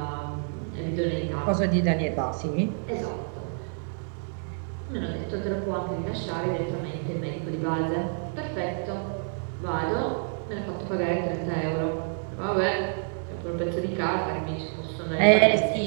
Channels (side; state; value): left; silent; 59 dB below the other